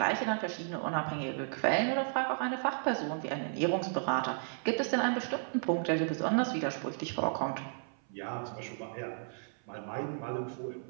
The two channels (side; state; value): left; silent; 55 dB below the other